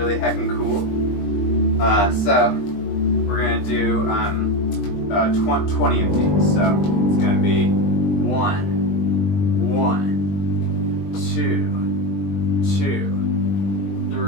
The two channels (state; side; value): late; right; 20 ms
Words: heckin' cool. So we're going to do 20 of these. So it's going to be 1, 2, 2.